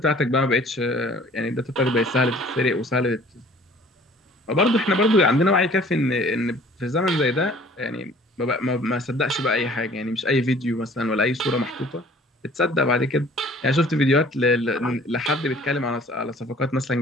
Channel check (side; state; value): both; normal; correlation 0.52